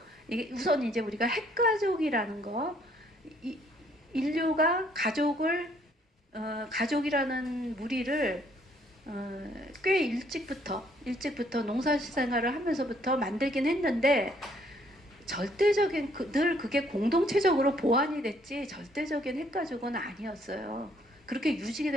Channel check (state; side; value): normal; both; correlation 0.66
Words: 이게 우선 이제 우리가 핵가족이라는 거, 인류가 가족이라는 무리를 꽤 일찍부터 농사생활을 하면서부터 만들긴 했는데, 절대적인 늘 그게 공동체적으로 보완이 됐지 절대적인 핵가족은 아니었어요. 그렇게